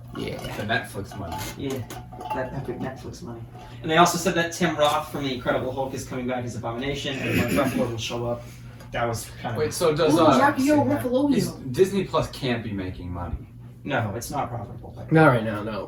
Yeah. The Netflix money. yeah, that epic Netflix money. And they also said that Tim Roth from the Incredible Hulk is coming back as Abomination, and Mark Ruffalo will show up. That was kind of Wait, so does Ooh, Rocky Horror Ruffalo. is Disney Plus can't be making money? no, it's not profitable, Not right now,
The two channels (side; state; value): both; identical; correlation 1.00